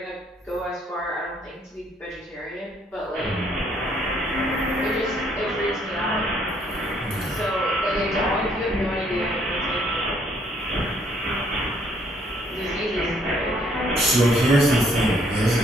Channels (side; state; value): both; normal; correlation 0.66